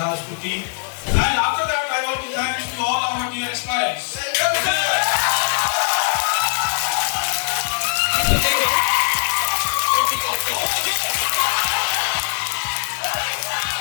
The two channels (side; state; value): right; silent; 65 dB below the other